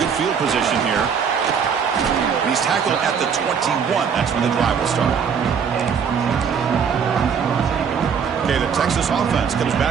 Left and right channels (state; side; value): quieter; left; 6.8 dB